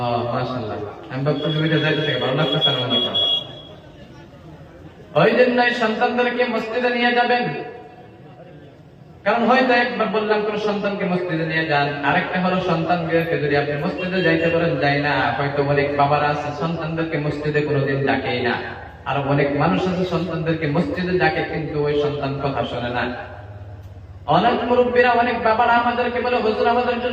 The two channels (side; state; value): both; identical; correlation 1.00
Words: মাশাআল্লাহ, আমি ভাবতেছি উঠে যাইতেছে, ভালো লাগতেছে না? মনে করেন ওই জন্যই সন্তানদেরকে মসজিদে নিয়ে যাবেন। কারণ হয়তো একবার বললাম কোন সন্তানকে মসজিদে নিয়ে যান, আরেকটা হলো সন্তানকে যদি আপনি মসজিদে যাইতে পারেন, যাই না। হয়তো অনেক বাবারা আছে সন্তানদেরকে মসজিদে কোনোদিন ডাকেই না, আর অনেক মানুষ আছে সন্তানদেরকে মসজিদে ডাকে, কিন্তু ওই সন্তান কথা শোনে না। অনেক মুরব্বীরা, অনেক বাবারা আমাদেরকে বলে, হুজুর আমাদের